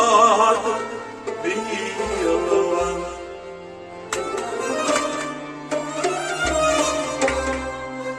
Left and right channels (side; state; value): both; identical; correlation 1.00